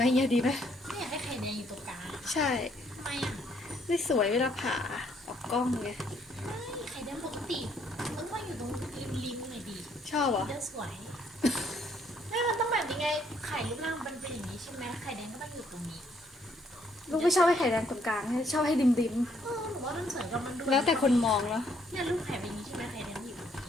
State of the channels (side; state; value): both; normal; correlation 0.68